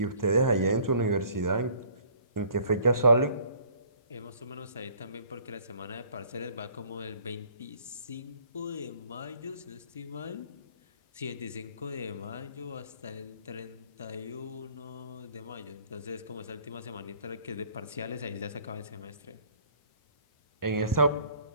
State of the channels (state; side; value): inverted; both; correlation -0.55